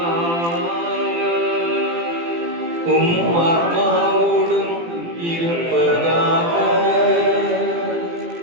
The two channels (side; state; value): left; late; 18 ms